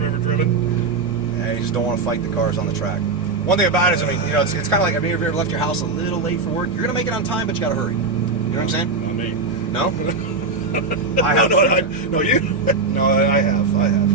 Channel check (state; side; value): quieter; left; 3.9 dB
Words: ever driven. Yeah, you just don't want to fight the cars on the track. One thing about it is, I mean, you know, it's kind of like, have you ever left your house a little late for work? You're going to make it on time, but you got to hurry. You know what I'm saying? Not me. No? I have. No, you? No, I have.